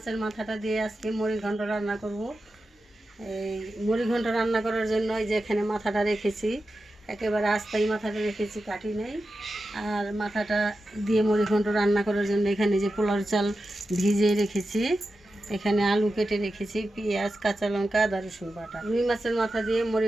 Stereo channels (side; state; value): both; normal; correlation 0.91